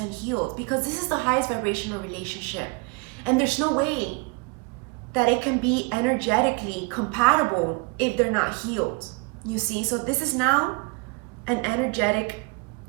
healed, because this is the highest vibrational relationship. And there's no way that it can be energetically compatible if they're not healed. You see, so this is now an energetic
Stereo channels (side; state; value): left; quieter; 29.8 dB